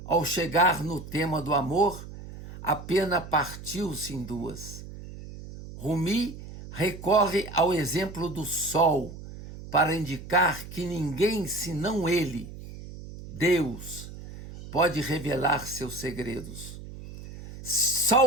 ao chegar no tema do amor, a pena partiu-se em duas. Rumi recorre ao exemplo do sol para indicar que ninguém senão ele, Deus, pode revelar seus segredos.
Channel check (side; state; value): right; noise; hum, 13 dB below the sound